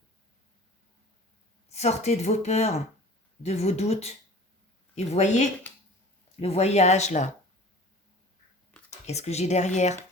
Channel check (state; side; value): normal; both; correlation 0.43